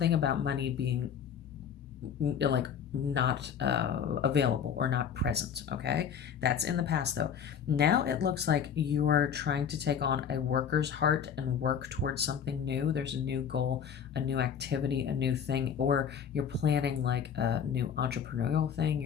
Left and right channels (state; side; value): quieter; right; 7.8 dB